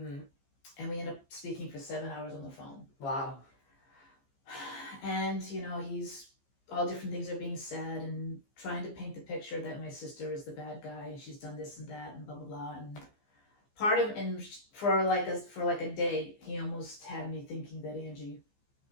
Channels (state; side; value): late; right; 15 ms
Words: and we end up speaking for 7 hours on the phone. Wow. And, he's all different things are being said and trying to paint the picture that my sister is the bad guy and she's done this and that and blah, blah, blah. And for like a day, he almost had me thinking that Angie